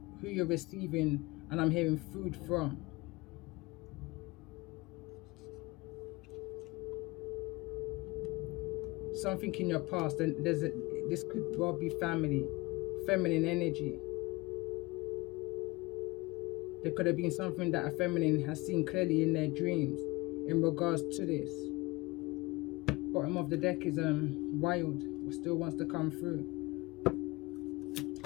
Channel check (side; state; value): right; quieter; 23.4 dB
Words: who you're receiving, and I'm hearing food from. Something in your past, and this could well be family, feminine energy. There could have been something that a feminine has seen clearly in their dreams in regards to this. Bottom of the deck is wild, still wants to come through.